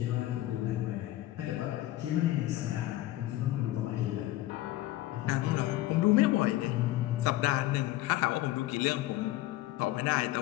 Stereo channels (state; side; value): quieter; right; 16.2 dB